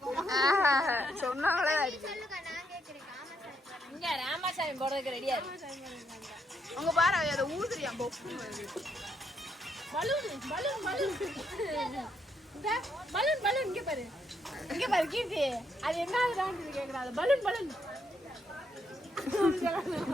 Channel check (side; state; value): both; normal; correlation 0.76